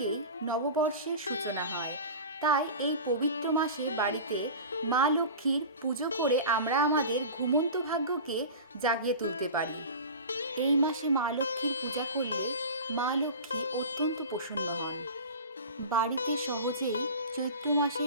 নববর্ষের সূচনা হয়। তাই এই পবিত্র মাসে বাড়িতে মা লক্ষ্মীর পুজো করে আমরা আমাদের ঘুমন্ত ভাগ্যকে জাগিয়ে তুলতে পারি। এই মাসে মা লক্ষ্মীর পূজা করলে মা লক্ষ্মী অত্যন্ত প্রসন্ন হন। বাড়িতে সহজেই চৈত্র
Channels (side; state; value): both; inverted; correlation -0.33